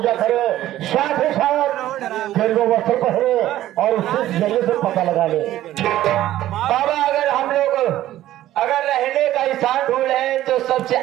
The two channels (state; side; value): quieter; left; 13.9 dB